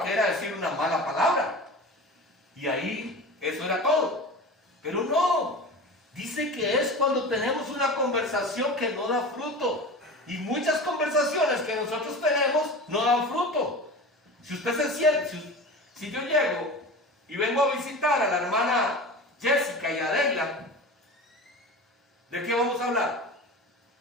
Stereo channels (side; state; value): both; normal; correlation 0.33